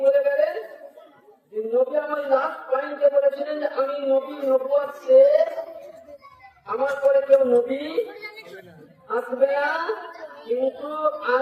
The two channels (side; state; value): both; identical; correlation 1.00